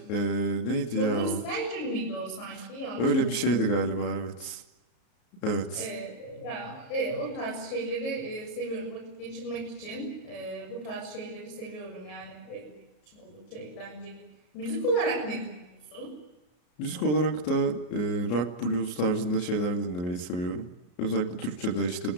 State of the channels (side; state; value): right; late; 34 ms